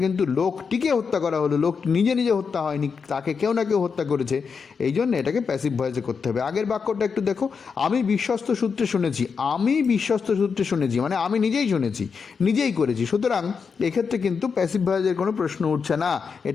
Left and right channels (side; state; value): right; quieter; 5.7 dB